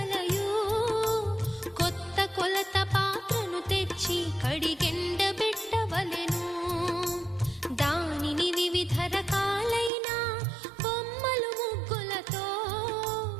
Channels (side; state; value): left; drops out; at 9.9 s